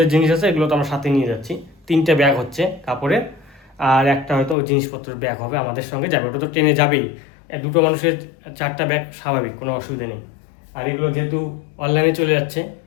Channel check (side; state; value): right; drops out; at 4.5 s